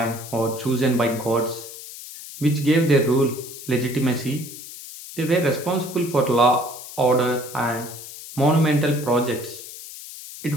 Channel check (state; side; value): noise; left; hiss, 13 dB below the sound